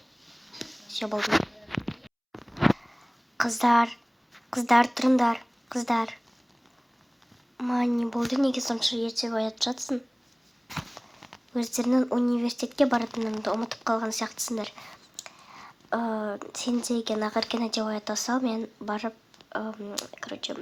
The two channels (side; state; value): both; identical; correlation 1.00